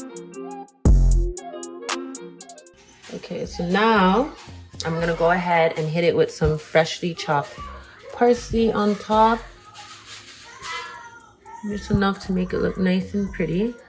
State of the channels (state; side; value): identical; both; correlation 1.00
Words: Okay, so now I'm gonna go ahead and hit it with some freshly chopped parsley on top. Just enough to make it look nice and pretty.